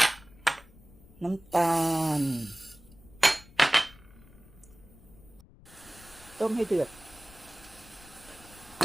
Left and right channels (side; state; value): left; noise; rumble, 22 dB below the sound